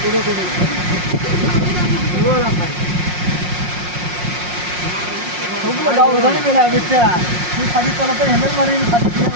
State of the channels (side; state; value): left; late; 5.6 ms